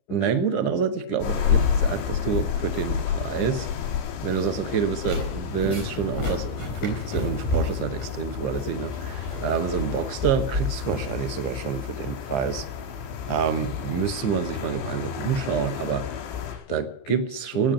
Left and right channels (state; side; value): late; right; 15 ms